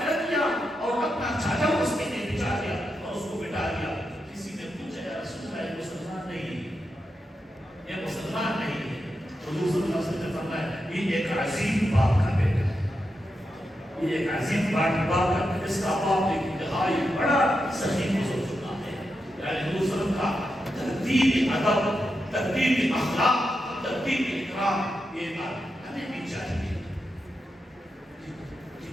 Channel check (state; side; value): normal; both; correlation 0.87